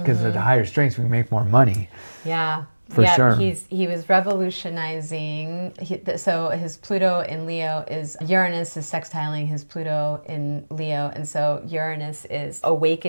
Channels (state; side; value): inverted; both; correlation -1.00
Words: at the higher strengths, we make more money. Yeah. For sure. He was revolutionizing. So his Pluto in Leo Uranus is sextiling his Pluto in Leo. And so Uranus is